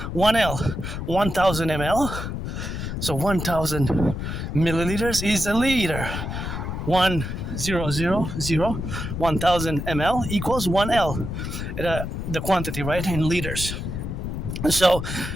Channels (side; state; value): left; noise; rumble, 5 dB below the sound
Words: 1L. 1,000 ml. So 1,000 milliliters is a liter. 1,000, 1,000 ml equals 1L. The quantity, right, in liters. So